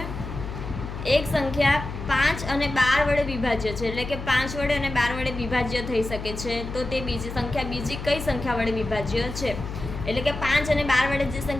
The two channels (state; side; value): noise; left; hum, 8 dB below the sound